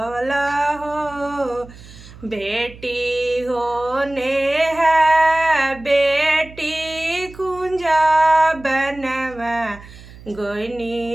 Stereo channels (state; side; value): noise; right; hum, 19 dB below the sound